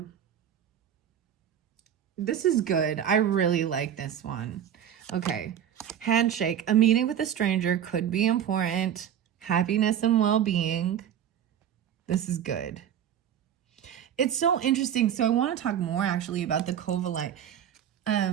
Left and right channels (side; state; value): left; quieter; 9.6 dB